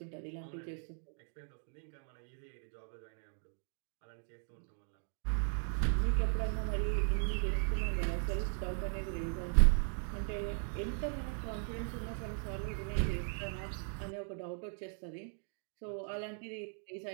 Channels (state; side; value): silent; left; 53 dB below the other